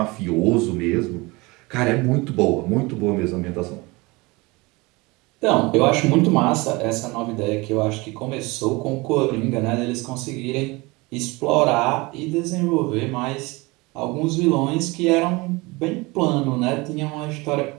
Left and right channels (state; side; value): quieter; left; 24.1 dB